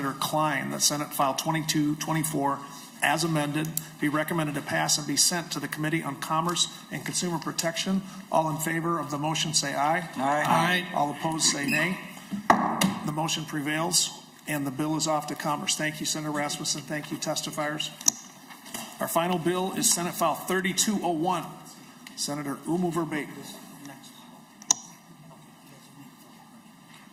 Klein that Senate File 2224 as amended be recommended to pass and be sent to the Committee on Commerce and Consumer Protection. All in favor of the motion say aye. Aye. Aye. All opposed say nay. The motion prevails and the bill is off to Commerce. Thank you, Senator Rasmusson. Thank you, testifiers. Our final bill is Senate File 3201. Senator Oumou Verbeten.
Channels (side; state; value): both; identical; correlation 1.00